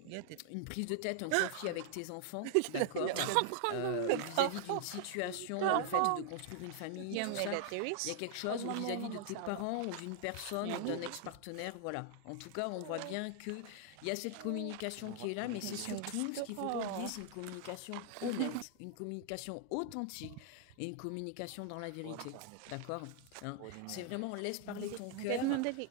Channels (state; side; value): different; both; correlation 0.00